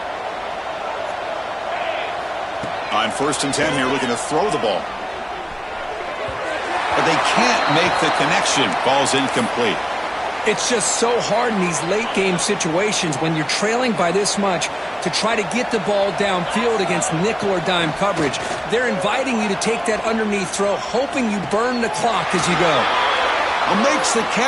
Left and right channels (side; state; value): both; identical; correlation 1.00